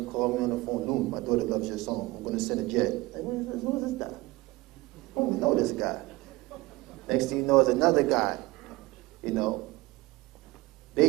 call me on the phone. "Loon, my daughter loves your song. I'm going to send a jet." Like, who is this guy? I don't know this guy. Next thing you know is another guy,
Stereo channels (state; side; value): quieter; left; 20.4 dB